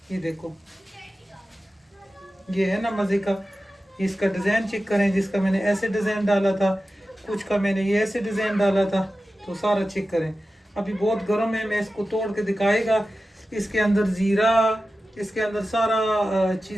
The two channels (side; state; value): both; normal; correlation 0.94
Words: ये देखो ये है ना मजे का। इसका डिजाइन चेक करें, जिसका मैंने ऐसे डिजाइन डाला था, कुछ का मैंने ये ऐसे डिजाइन डाला था, तो सारा चेक करें। अभी बहुत गर्म है, मैं इसको तोड़ के दिखाएगा। इसके अंदर जीरा, इसके अंदर सारा